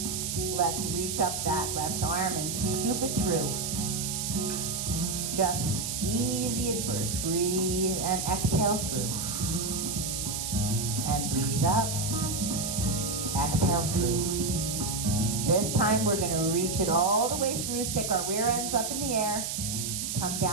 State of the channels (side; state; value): right; noise; hiss, 3 dB below the sound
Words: Let's reach up that left arm and scoop it through. Just easy at first. Breathe and exhale through. And breathe up. Exhale through. This time we're going to reach it all the way through. Stick our rear ends up in the air. Come